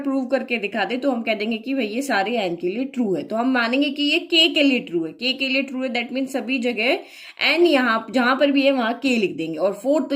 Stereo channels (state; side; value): identical; both; correlation 1.00